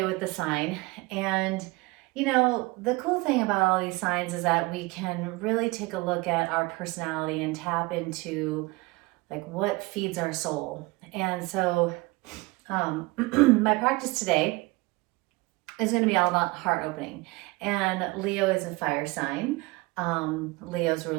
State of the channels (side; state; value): left; quieter; 23.4 dB